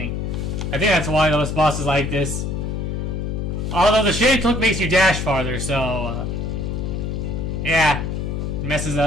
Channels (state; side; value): noise; left; hum, 2 dB below the sound